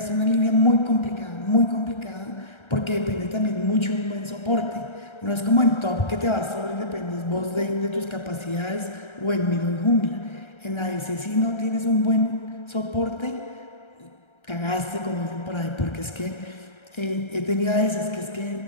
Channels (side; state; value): right; late; 1.3 ms